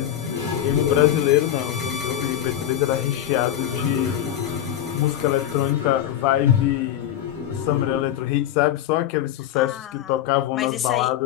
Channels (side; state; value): right; quieter; 11.2 dB